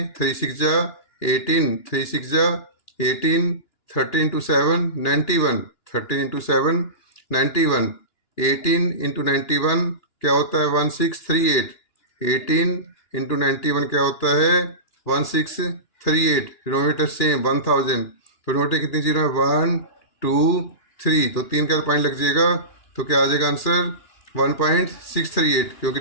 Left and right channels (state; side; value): late; right; 2.9 ms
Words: 3 6 जा 18, 3 6 जा 18, 30 इंटू 7 91, 13 इंटू 7 91, 18 इंटू 91 क्या होता है 1638, 18 इंटू 91 क्या होता है 1638। Denominator same 1000। तो डिनोमिनेटर कितनी जीरो है 1 2 3, तो 3 का पॉइंट लग जाएगा। तो क्या आ जाएगा आंसर 1.638, क्योंकि